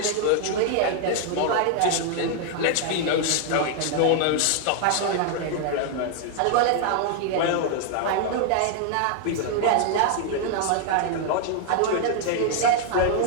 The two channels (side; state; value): both; different; correlation 0.00